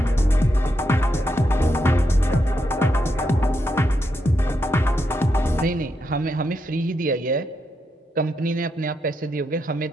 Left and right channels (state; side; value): normal; both; correlation 0.83